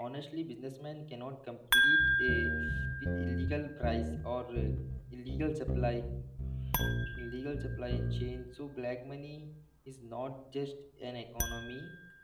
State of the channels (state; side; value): identical; both; correlation 1.00